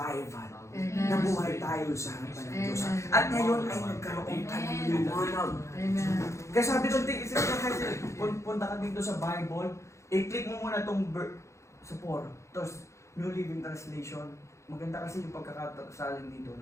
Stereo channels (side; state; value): right; late; 0.14 ms